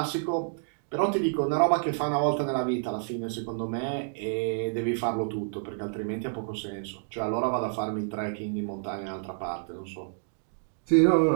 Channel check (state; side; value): silent; left; digital silence